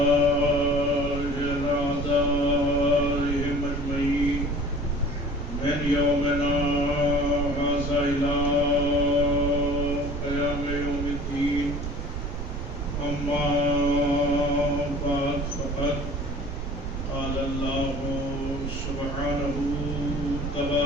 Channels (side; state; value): right; noise; rumble, 4 dB below the sound